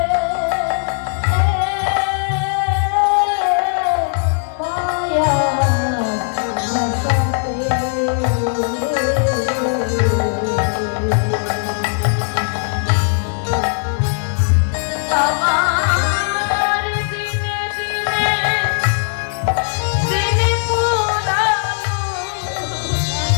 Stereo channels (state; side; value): silent; right; 67 dB below the other